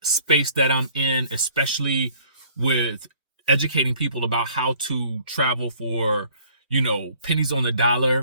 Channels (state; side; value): inverted; both; correlation -0.57